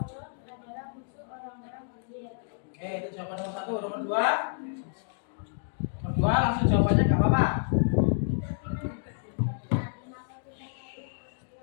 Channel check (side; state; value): right; silent; digital silence